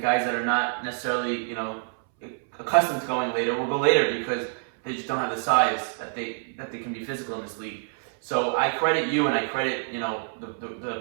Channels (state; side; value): silent; left; 60 dB below the other